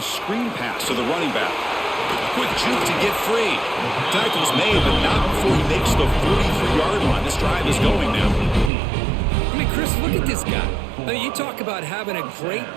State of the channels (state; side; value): drops out; left; at 8.7 s